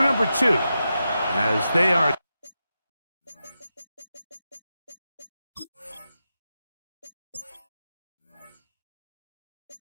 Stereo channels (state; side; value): inverted; both; correlation -0.89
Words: number 2 as they are